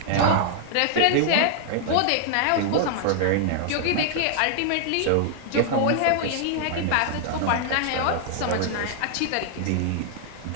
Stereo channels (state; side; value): different; both; correlation 0.00